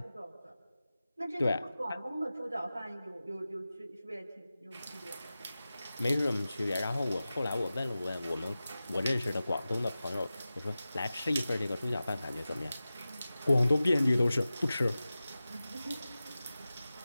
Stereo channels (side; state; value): both; inverted; correlation -0.95